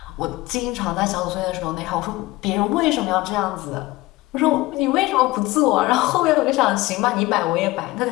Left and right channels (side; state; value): right; quieter; 19.7 dB